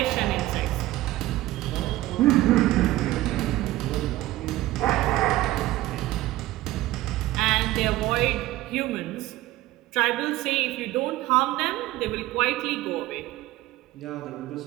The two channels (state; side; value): quieter; left; 16.5 dB